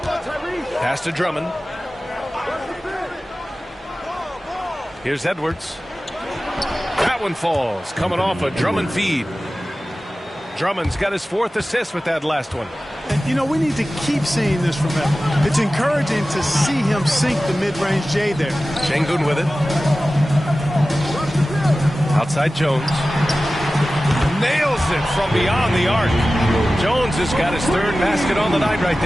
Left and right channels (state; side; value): normal; both; correlation 0.96